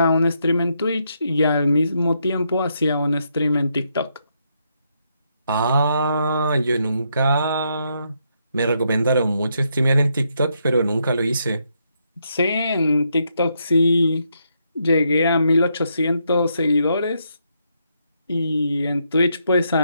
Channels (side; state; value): both; inverted; correlation -0.78